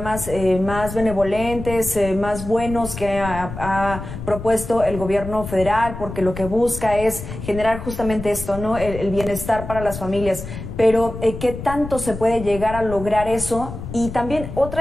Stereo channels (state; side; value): noise; left; rumble, 9 dB below the sound